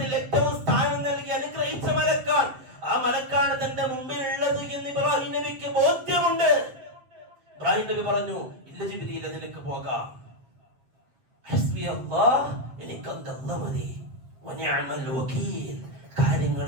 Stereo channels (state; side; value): late; left; 7.7 ms